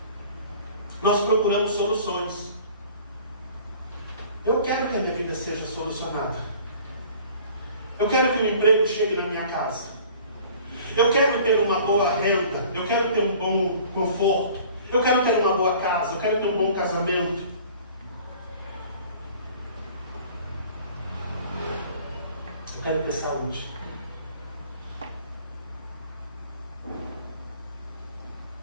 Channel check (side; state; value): both; inverted; correlation -0.48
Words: Nós procuramos soluções. Eu quero que a minha vida seja solucionada. Eu quero que o emprego chegue na minha casa. Eu quero ter uma boa renda. Eu quero ter um bom conforto. Eu quero ter uma boa casa. Eu quero ter um bom casamento. Eu quero ter saúde.